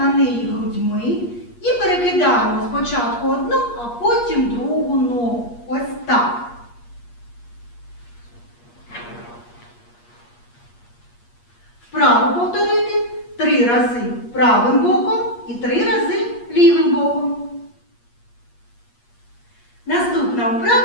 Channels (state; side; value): late; right; 8.4 ms